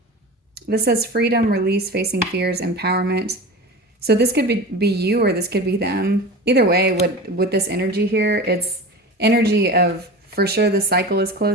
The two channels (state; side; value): normal; both; correlation 0.31